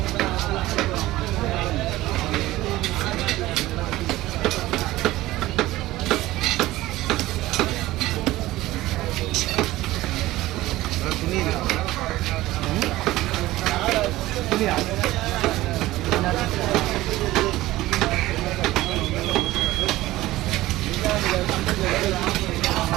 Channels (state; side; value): quieter; left; 17.1 dB